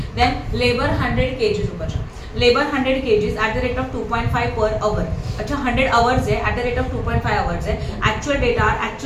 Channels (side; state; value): both; identical; correlation 1.00